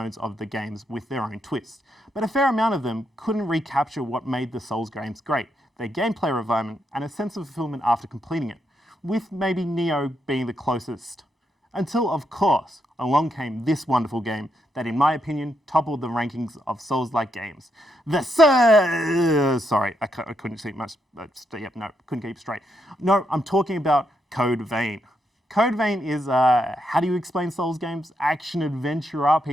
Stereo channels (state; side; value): normal; both; correlation 0.80